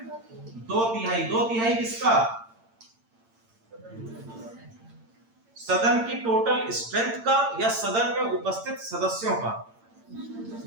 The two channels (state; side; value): late; left; 8.8 ms